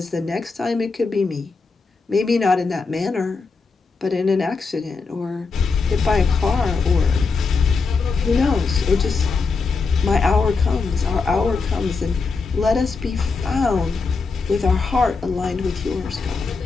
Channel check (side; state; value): right; quieter; 4.5 dB